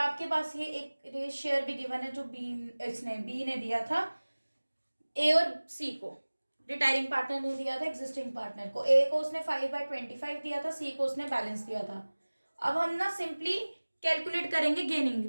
पास ये एक शेयर भी गिवन है जो बी ने दिया था ए और सी को, रिटायरिंग पार्टनर ने दिया था एग्जिस्टिंग पार्टनर को। ए को उसने 5/25 दिया था, सी को उसने बैलेंस दिया था। अब हम ना सिंपली कैलकुलेट करेंगे गेनिंग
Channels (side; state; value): both; inverted; correlation -1.00